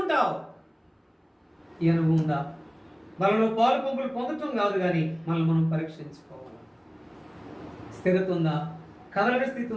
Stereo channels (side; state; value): both; identical; correlation 1.00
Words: ఈ అనుభవం ఉందా? మనలో పాలు పంపులు పొందటం కాదు, కానీ మనల్ని మనం పరీక్షించుకోవాలి. స్థిరత ఉందా? కదలని స్థితి